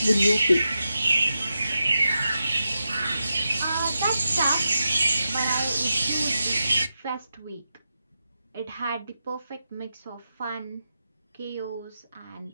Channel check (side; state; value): both; inverted; correlation -0.88